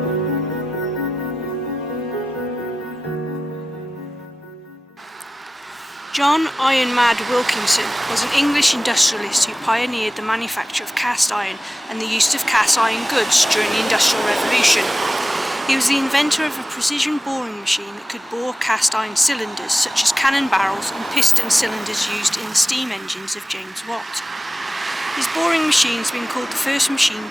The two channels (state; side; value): normal; both; correlation 0.94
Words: John Iron Mad Wilkinson was an English industrialist who pioneered the manufacture of cast iron and the use of cast iron goods during the Industrial Revolution. He was the inventor of a precision boring machine that could bore cast iron cylinders such as cannon barrels and piston cylinders used in the steam engines of James Watt. His boring machine has been called the first